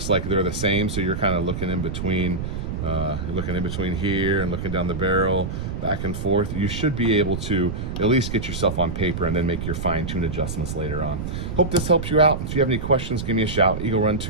like they're the same, so you're kind of looking in between. You're looking in between here and looking down the barrel, back and forth. You should be able to at least get yourself on paper and then make your fine-tune adjustments later on. Hope this helps you out. If you have any questions, give me a shout. Eagle Run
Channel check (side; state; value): right; noise; rumble, 5 dB below the sound